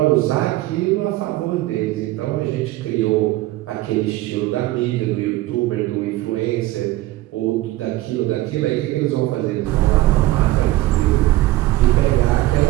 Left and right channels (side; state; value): left; quieter; 17.0 dB